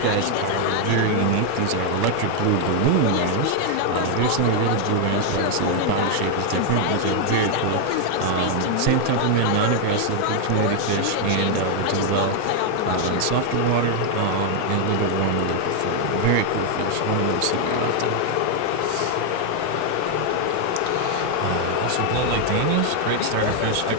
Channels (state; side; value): different; both; correlation 0.00